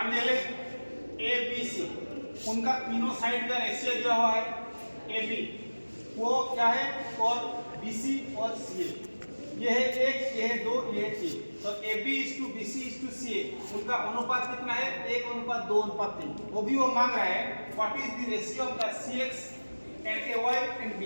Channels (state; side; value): inverted; both; correlation -1.00